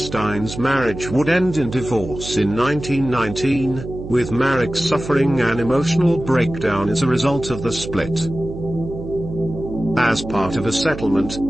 marriage would end in divorce in 1919, with Marek suffering an emotional breakdown as a result of the split. As part of a settlement,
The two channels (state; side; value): noise; right; hum, 10 dB below the sound